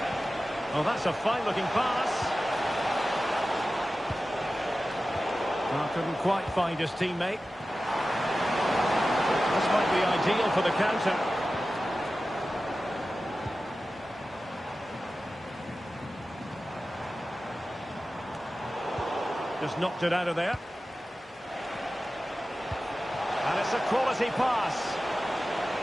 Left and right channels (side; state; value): both; normal; correlation 0.95